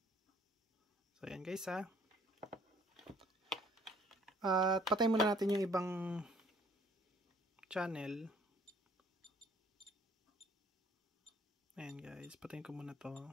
So ayan guys At patay muna natin yung ibang channel. Ayan guys, patayin ko muna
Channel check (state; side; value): normal; both; correlation 0.58